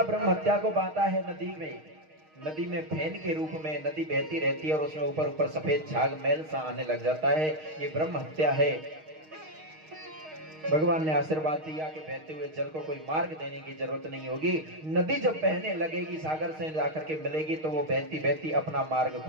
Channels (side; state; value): left; late; 6.4 ms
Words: ब्रह्मत्या को बांटा है नदी में। नदी में फैन के रूप में नदी बहती रहती है और उसमें ऊपर ऊपर सफेद झाग मैल सा आने लग जाता है, ये ब्रह्म हत्या है। भगवान ने आशीर्वाद दिया कि बहते हुए जल को कोई मार्ग देने की जरूरत नहीं होगी। नदी जब बहने लगेगी, सागर से जाकर के मिलेगी, तो वो बहती बहती अपना मार्ग